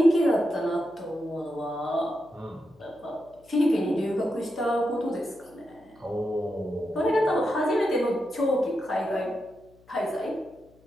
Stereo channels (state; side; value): noise; left; hum, 29 dB below the sound